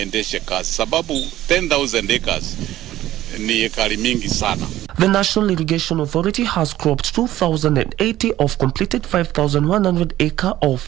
kazi, sababu 10,000 acres ni ekari mingi sana. The National Irrigation Authority has cropped 2,080 of completed 5,100 acre of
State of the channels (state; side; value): quieter; left; 14.2 dB